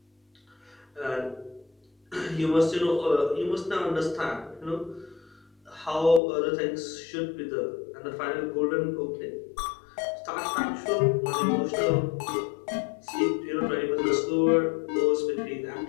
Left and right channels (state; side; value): drops out; right; at 6.2 s